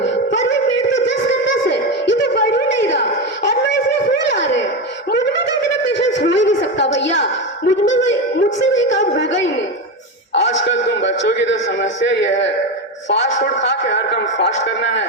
पर ये पेड़ तो 10 का 10 है, ये तो बढ़ ही नहीं रहा और ना इसमें फूल आ रहे हैं। मुझमें तो इतना पेशेंस हो ही नहीं सकता भैया, मुझसे ये काम होगा ही नहीं। आजकल तुम बच्चों की तो समस्या ये है, फास्ट फूड खा के हर काम फास्ट करना है,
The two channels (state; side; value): normal; both; correlation 0.16